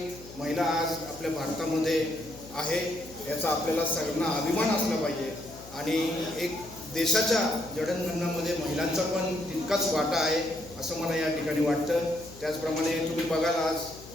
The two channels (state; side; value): noise; left; hum, 18 dB below the sound